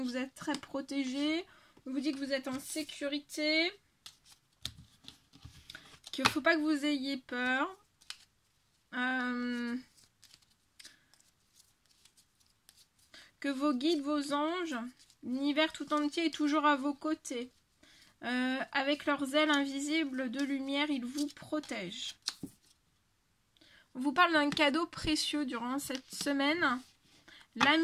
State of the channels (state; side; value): identical; both; correlation 1.00